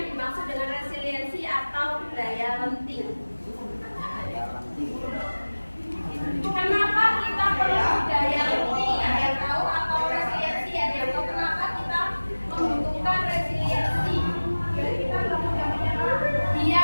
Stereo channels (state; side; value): inverted; both; correlation -1.00